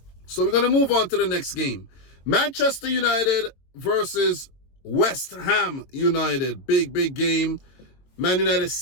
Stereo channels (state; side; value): late; right; 22 ms